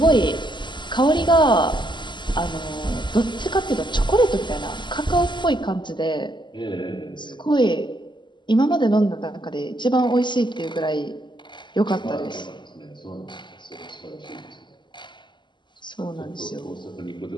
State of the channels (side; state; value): right; late; 0.22 ms